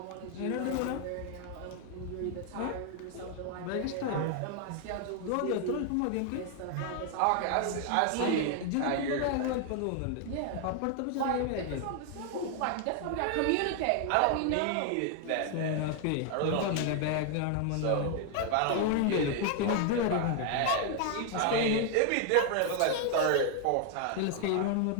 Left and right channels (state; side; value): different; both; correlation 0.00